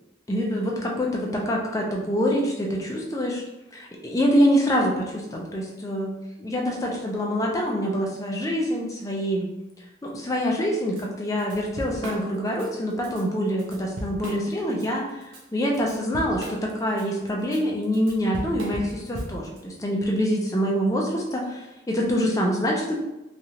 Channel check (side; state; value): both; normal; correlation 0.64